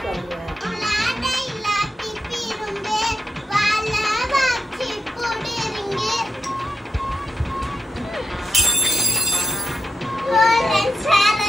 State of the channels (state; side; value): normal; both; correlation 0.86